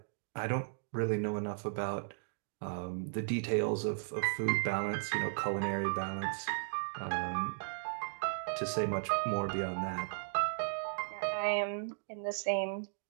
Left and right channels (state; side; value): silent; left; digital silence